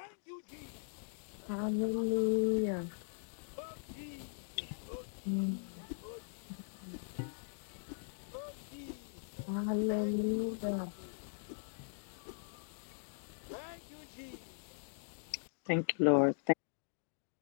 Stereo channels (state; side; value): silent; right; digital silence